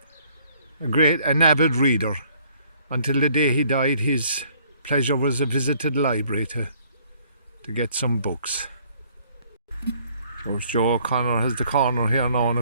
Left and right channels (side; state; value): both; inverted; correlation -0.61